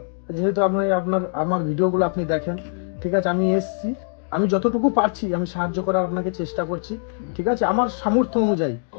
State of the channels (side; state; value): right; silent; digital silence